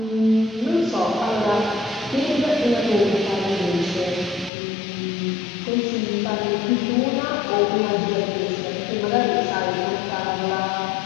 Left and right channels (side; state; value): right; drops out; at 4.5 s